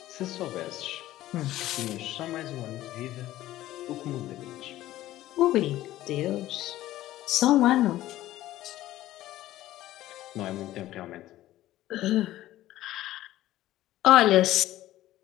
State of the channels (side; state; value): right; quieter; 14.9 dB